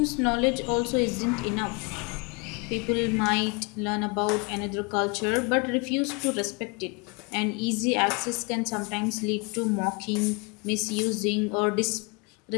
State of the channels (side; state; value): right; quieter; 31.2 dB